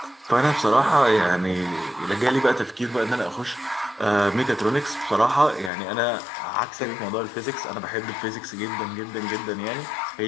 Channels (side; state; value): right; drops out; at 5.7 s